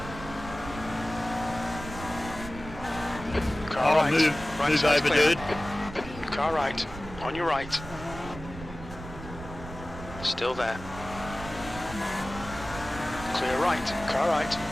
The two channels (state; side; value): noise; right; rumble, 12 dB below the sound